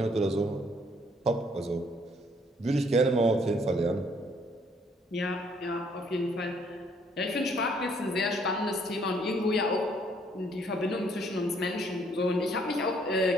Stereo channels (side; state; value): both; normal; correlation 0.65